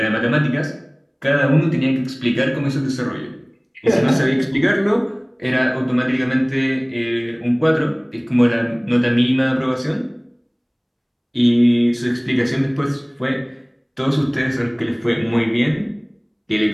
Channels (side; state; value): both; identical; correlation 1.00